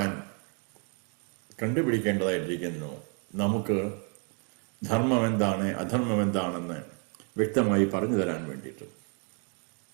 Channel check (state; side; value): quieter; left; 39.0 dB